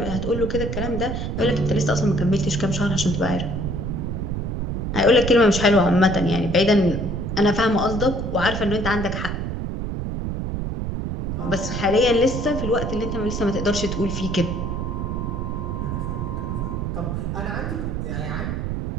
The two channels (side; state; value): right; noise; rumble, 3 dB below the sound